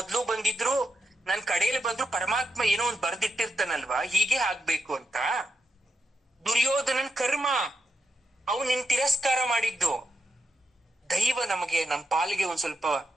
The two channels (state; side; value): normal; both; correlation 0.85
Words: ಬಂದಿದ್ರು ನನ್ ಕಡೆಯಲ್ಲಿ ಬಂದ್ರು ಪರಮಾತ್ಮ ಏನೋ ಒಂದ್ ಬರ್ದಿಟ್ಟಿರ್ತಾನಲ್ವಾ, ಹೀಗೆ ಆಗ್ಬೇಕು ಅಂತ. ದುರ್ಯೋಧನನ್ ಕರ್ಮ, ಅವನ್ ನಿನ್ ತಿರಸ್ಕಾರ ಮಾಡಿದ್ದು. ದೈವ ನಮಗೆ, ನಮ್ ಪಾಲಿಗೆ ಒಂದ್ ಸ್ವಲ್ಪ